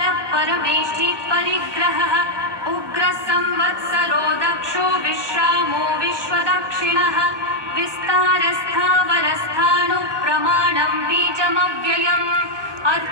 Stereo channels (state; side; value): late; left; 1.2 ms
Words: परमेष्ठी परिग्रहः उग्रः संवत्सरो दक्षो विश्रामो विश्वदक्षिणः विस्तारस्थावरस्थाणुः प्रमाणं बीजमव्ययम्